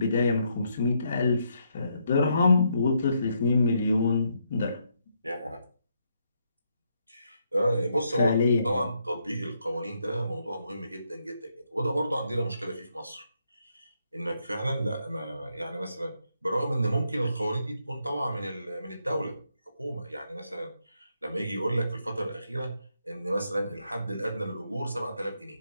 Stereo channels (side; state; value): both; inverted; correlation -0.77